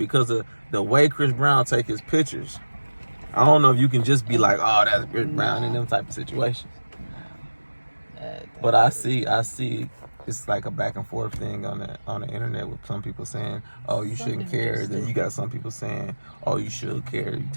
of the way Chris Brown take his pictures. I don't know if you can just be like, oh, that's Chris Brown in them type of situations. But I see it's like a back and forth thing on the internet with some people saying, oh, you shouldn't care. Then you got some people saying, oh, you should care. You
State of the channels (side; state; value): both; inverted; correlation -1.00